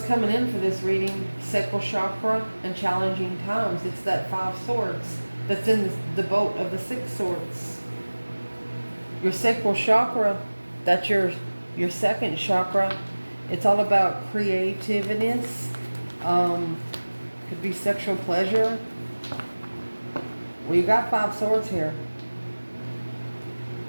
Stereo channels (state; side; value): inverted; both; correlation -1.00